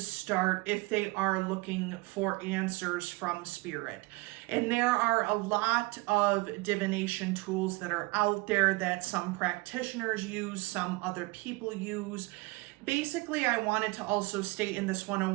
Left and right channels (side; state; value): left; quieter; 24.3 dB